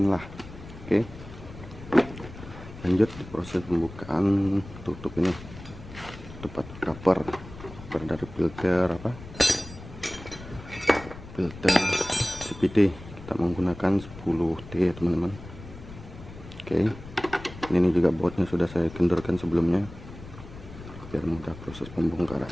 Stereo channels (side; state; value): left; noise; rumble, 15 dB below the sound